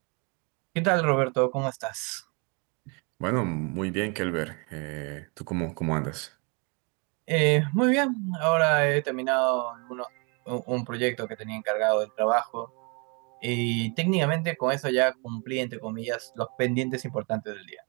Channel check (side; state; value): left; quieter; 33.0 dB